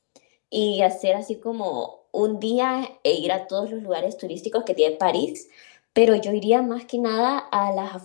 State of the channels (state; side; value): silent; right; digital silence